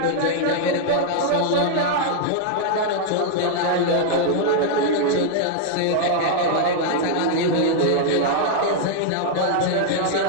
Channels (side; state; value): both; different; correlation 0.00